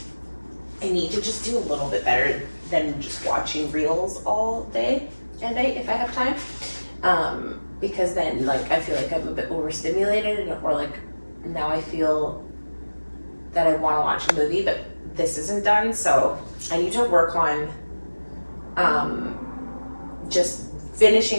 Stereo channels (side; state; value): both; inverted; correlation -1.00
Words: I need to just do a little bit better than just watching reels all day and night if I have time, because then like I feel like I'm a bit overstimulated, or like now I feel that I want to watch a movie but this isn't done, so I need to work on just